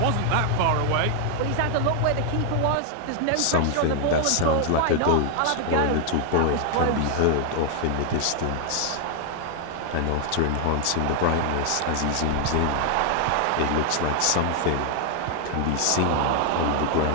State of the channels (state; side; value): different; both; correlation 0.00